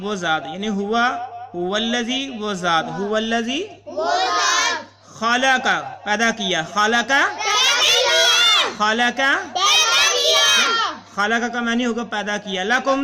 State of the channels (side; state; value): both; identical; correlation 1.00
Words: وہ ذات، یعنی ہوا الذی وہ ذات. ہوا الذی خلق پیدا کیا. خلق کا معنی ہوگا پیدا کیا. لکم